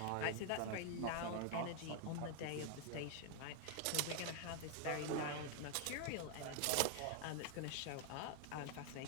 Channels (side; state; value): both; different; correlation 0.00